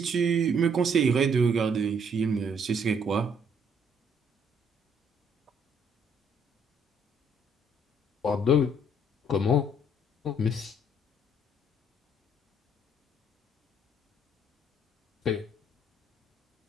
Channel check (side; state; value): both; normal; correlation 0.66